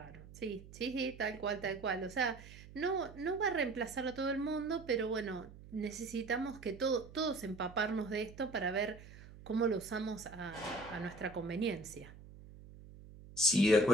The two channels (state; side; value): noise; right; hum, 18 dB below the sound